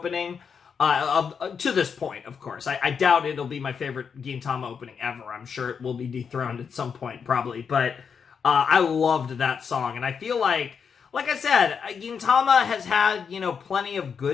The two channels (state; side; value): quieter; right; 6.5 dB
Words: To this point, of course. I doubt it'll be my favorite Gintama opening ever. I'm sure it will be dethroned at some point, probably. But I loved that song. And I feel like I said, Gintama has had, plenty of